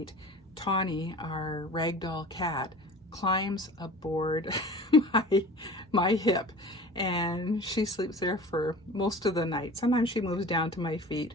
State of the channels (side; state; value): both; normal; correlation 0.40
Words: Tawny, our ragdoll cat, climbs aboard my hip, and she sleeps there for most of the night. Sometimes she moves down to my feet,